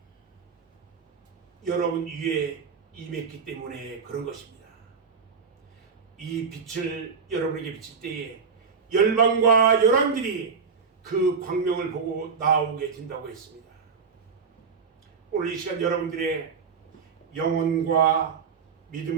여러분 위에 임했기 때문에 그런 것입니다. 이 빛을 여러분에게 비칠 때에 열방과 열왕들이 그 광명을 보고 나오게 된다고 했습니다. 오늘 이 시간 여러분들의 영혼과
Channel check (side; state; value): left; quieter; 5.8 dB